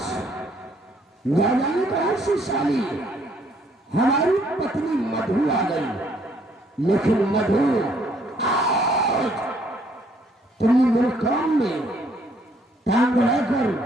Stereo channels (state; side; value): normal; both; correlation 0.66